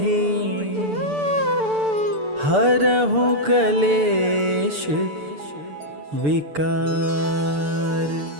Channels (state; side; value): late; left; 6.8 ms